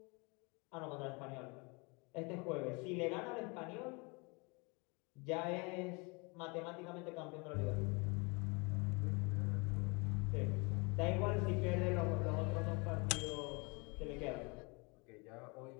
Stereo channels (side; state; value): right; quieter; 29.7 dB